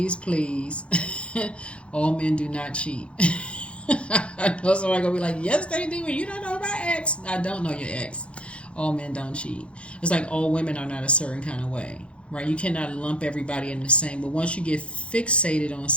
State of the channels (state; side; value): late; right; 0.060 ms